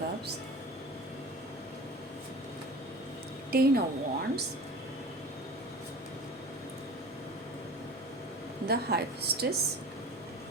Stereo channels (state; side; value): normal; both; correlation 0.37